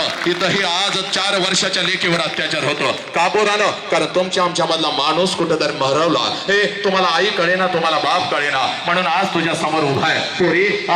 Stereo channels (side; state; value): both; identical; correlation 1.00